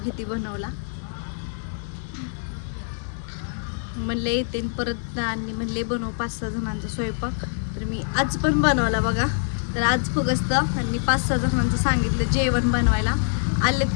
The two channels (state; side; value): silent; right; digital silence